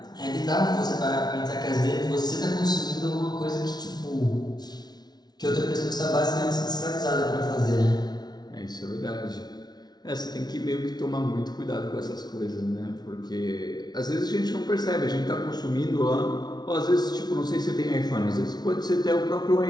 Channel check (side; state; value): right; late; 0.19 ms